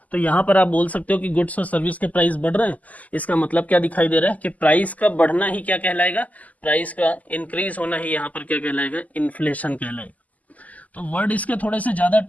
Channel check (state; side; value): late; right; 0.076 ms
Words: तो यहाँ पर आप बोल सकते हो कि गुड्स और सर्विस के प्राइस बढ़ रहे हैं। इसका मतलब क्या दिखाई दे रहा है कि प्राइस का बढ़ना ही क्या कहलाएगा, प्राइस का इंक्रीज होना ही यहाँ पर क्या कहलाएगा, इन्फ्लेशन कहलाएगा। तो वर्ड इसके थोड़े से ज़्यादा